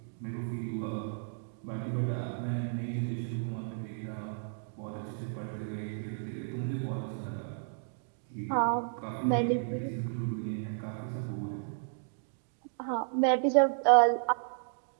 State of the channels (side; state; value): left; silent; digital silence